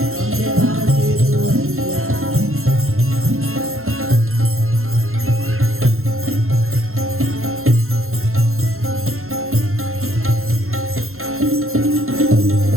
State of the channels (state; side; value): late; left; 0.62 ms